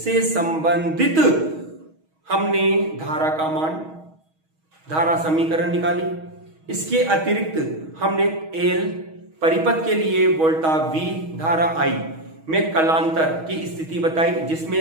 संबंधित हमने धारा का मान, धारा समीकरण निकाली। इसके अतिरिक्त हमने L परिपथ के लिए वोल्टा V धारा I में कलांतर की स्थिति बताई,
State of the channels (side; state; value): left; late; 6.3 ms